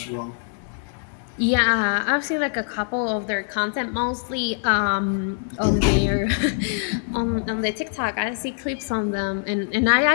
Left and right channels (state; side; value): silent; right; digital silence